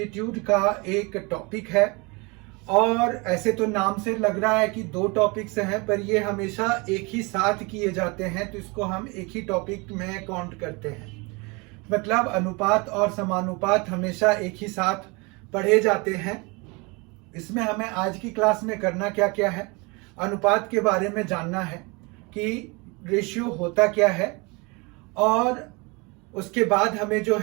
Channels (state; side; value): quieter; left; 28.1 dB